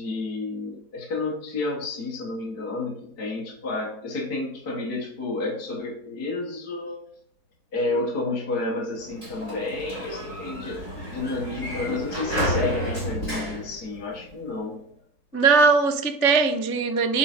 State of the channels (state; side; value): late; right; 3.9 ms